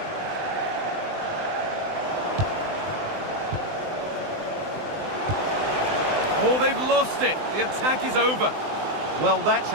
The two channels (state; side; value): late; left; 20 ms